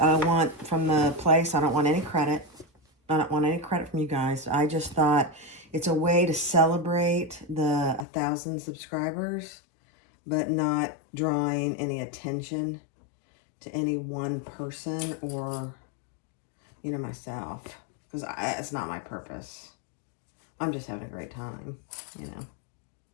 want from the place. I don't want any credit. I don't want any credit from you guys. I just thought it's a way to celebrate the 1,000 subscribers, but not drawing any attention to any one person or, you know, myself. Because it's not my purpose. I'm just having a great time, you know.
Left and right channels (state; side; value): drops out; right; at 8.1 s